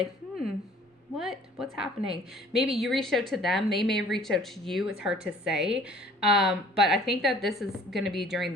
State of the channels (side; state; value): both; normal; correlation 0.52